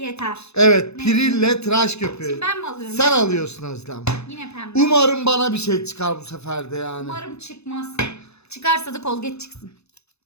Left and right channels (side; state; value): right; late; 0.80 ms